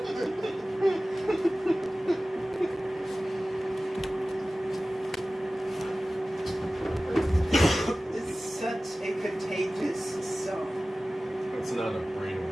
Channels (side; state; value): both; normal; correlation 0.97